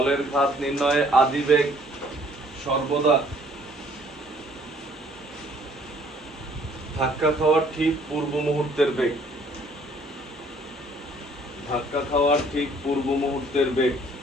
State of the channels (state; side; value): normal; both; correlation 0.60